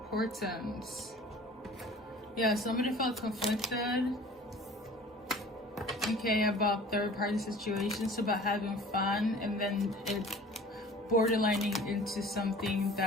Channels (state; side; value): normal; both; correlation 0.45